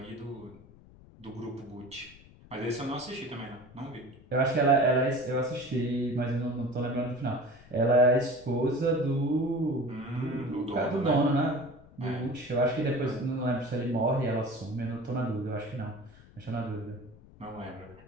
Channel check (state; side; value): noise; left; rumble, 22 dB below the sound